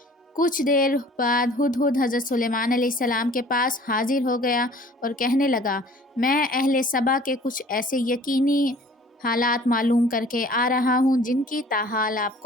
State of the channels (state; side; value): normal; both; correlation 0.50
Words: کچھ دیر بعد ہدہد حضرت سلیمان علیہ السلام کے پاس حاضر ہو گیا اور کہنے لگا، میں اہل سبا کے کچھ ایسے یقینی حالات معلوم کر کے آ رہا ہوں جن کی تاحال آپ